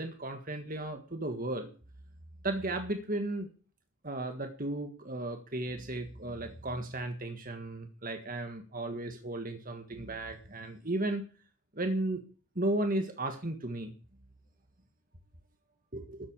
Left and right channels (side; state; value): both; normal; correlation 0.45